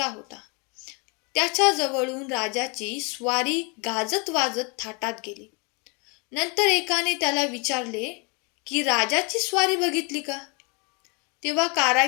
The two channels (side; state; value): right; quieter; 32.7 dB